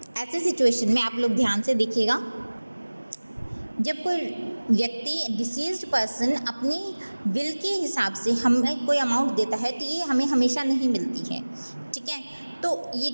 ऐसी सिचुएशन में आप लोग ध्यान से देखिएगा, जब कोई व्यक्ति डिसीज्ड पर्सन अपनी विल के हिसाब से हमें कोई अमाउंट देता है तो ये हमें हमेशा नहीं मिलती है, ठीक है। तो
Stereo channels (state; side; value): inverted; both; correlation -1.00